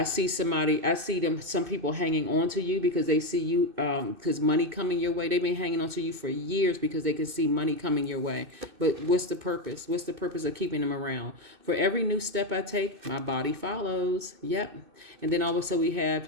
see some people hanging on to you because they see you, because money coming your way. They've been hanging on to you for years because they can see money coming your way. But what's the purpose? What's the purpose of keeping them around? For every new step I take, my body follows. Yep. And then also we have,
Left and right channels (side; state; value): left; late; 2.6 ms